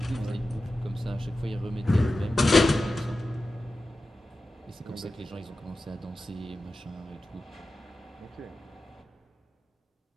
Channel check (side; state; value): both; normal; correlation 0.93